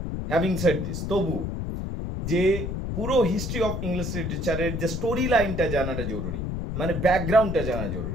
হ্যাভিং সেড দিস, তবু যে পুরো হিস্ট্রি অফ ইংলিশ লিটারেচারের যে স্টোরি লাইনটা জানাটা জরুরি, মানে ব্যাকগ্রাউন্ডটা জানা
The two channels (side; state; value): left; noise; rumble, 3 dB below the sound